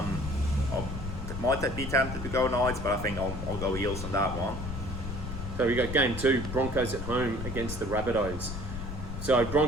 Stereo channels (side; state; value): left; noise; rumble, 6 dB below the sound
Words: might be tempted to go Knights, but I think I'll go Eels on that one. So we got game 2, Broncos at home against the Rabbitohs. So